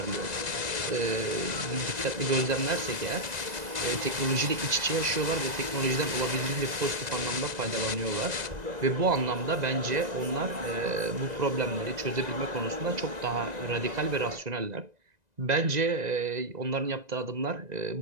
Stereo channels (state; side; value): late; left; 1.9 ms